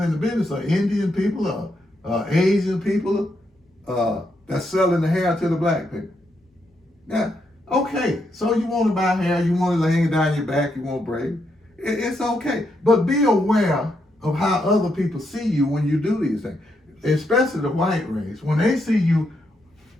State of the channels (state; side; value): normal; both; correlation 0.80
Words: in the business are Indian people, Asian people that's selling the hair to the black people. Now, okay, so you want to buy hair, you want to hang it down your back, you want braid. It's okay. But be aware of how other people see you when you do these things, especially the white race. When they see you